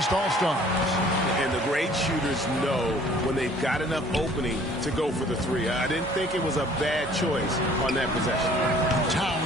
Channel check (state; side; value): normal; both; correlation 0.54